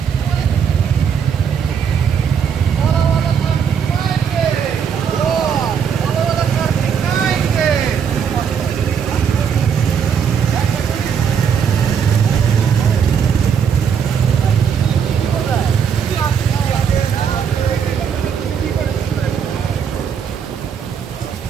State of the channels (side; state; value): left; quieter; 7.3 dB